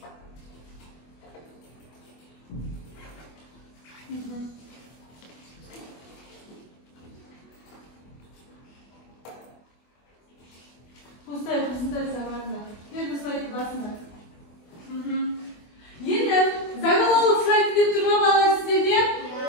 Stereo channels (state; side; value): late; right; 24 ms